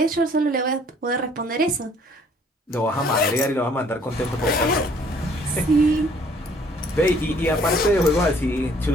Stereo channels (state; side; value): normal; both; correlation 0.59